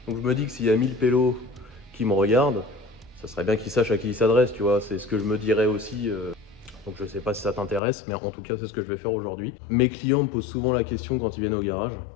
Donc je me dis que s'il y a 1000 pélos qui me regardent, ça serait bien qu'ils sachent à qui ils s'adressent, tu vois. C'est ce que je me dirais aussi. Donc je sais pas si ça t'intéresse, mais en tout cas c'est ce que je vais faire aujourd'hui. Mes clients me posent souvent la question quand ils viennent au garage.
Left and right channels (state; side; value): drops out; right; at 7.8 s